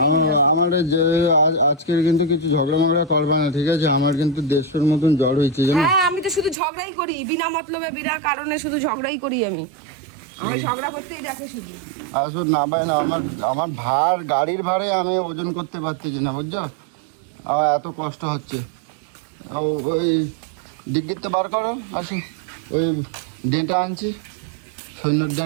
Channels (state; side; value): drops out; left; at 6.6 s